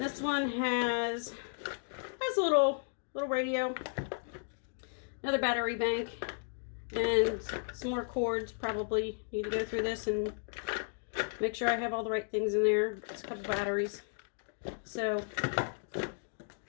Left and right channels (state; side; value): silent; right; digital silence